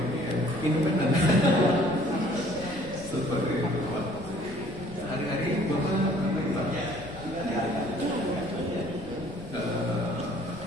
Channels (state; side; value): noise; left; rumble, 17 dB below the sound